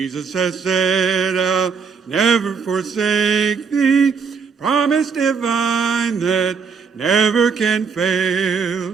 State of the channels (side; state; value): left; quieter; 5.7 dB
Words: has said, I'll never forsake thee, promise divine that never can